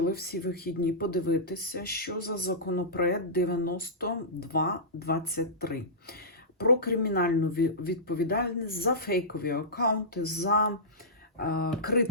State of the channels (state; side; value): normal; both; correlation -0.17